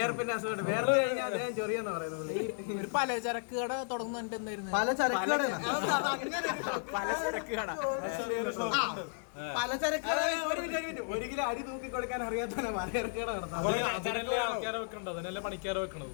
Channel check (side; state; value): right; silent; 55 dB below the other